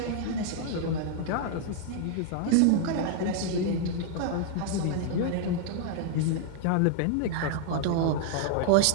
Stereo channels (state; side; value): different; both; correlation 0.00